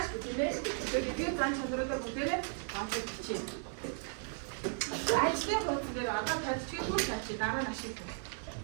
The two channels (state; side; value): silent; left; 54 dB below the other